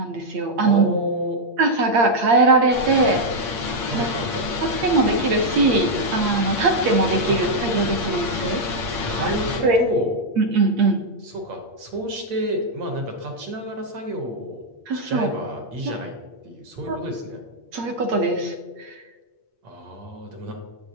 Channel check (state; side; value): late; left; 8.6 ms